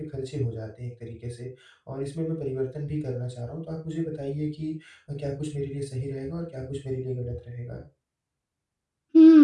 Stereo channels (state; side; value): identical; both; correlation 1.00